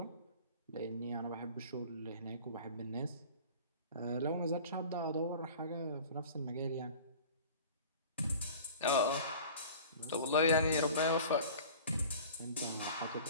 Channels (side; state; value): both; inverted; correlation -0.42